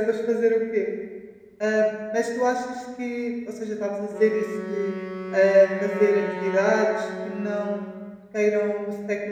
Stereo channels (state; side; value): identical; both; correlation 1.00